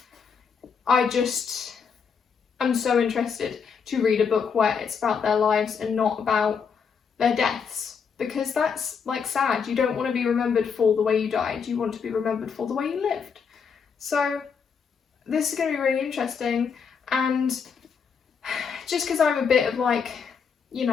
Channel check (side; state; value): right; quieter; 6.3 dB